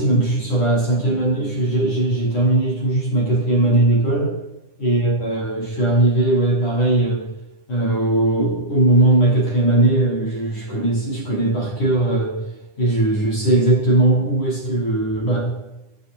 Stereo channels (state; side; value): late; right; 9.9 ms